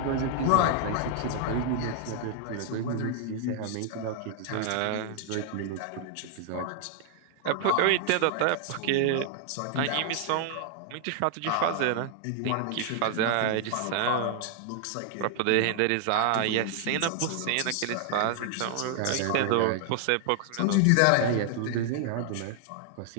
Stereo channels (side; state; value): both; different; correlation 0.00